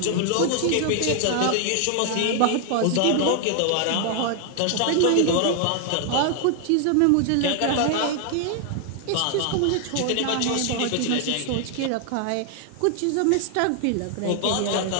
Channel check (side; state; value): both; different; correlation 0.00